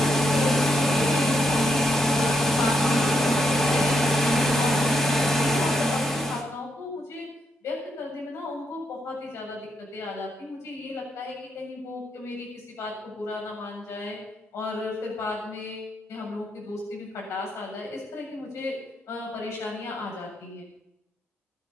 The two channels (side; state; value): both; normal; correlation 0.79